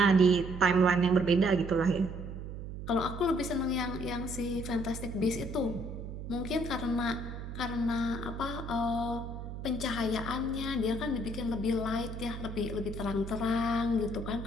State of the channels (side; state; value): right; noise; hum, 8 dB below the sound